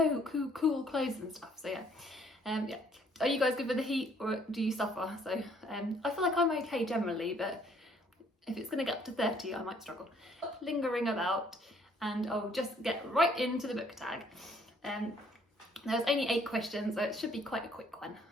and stuff. So yeah, yeah. Are you guys good with the heat, or do you suffer? So I feel like I'm okay generally, but if it's going to get up to 30, I might struggle. Lingering about, and I'll just get right into the book tag. There's only 8 questions, so it should be quite a quick one,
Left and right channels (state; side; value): normal; both; correlation 0.63